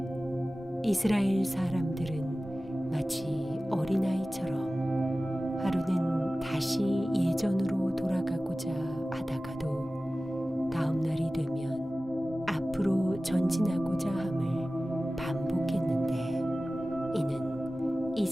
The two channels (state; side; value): normal; both; correlation 0.96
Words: 이스라엘 사람들은 마치 어린아이처럼 하루는 다시 예전으로 돌아가고자 하다가도 다음 날이 되면 앞으로 전진하고자 함을 반복했는데 이는